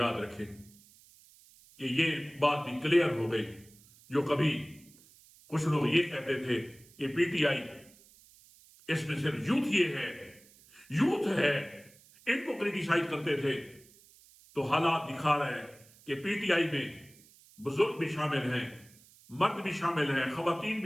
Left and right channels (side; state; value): right; noise; hiss, 26 dB below the sound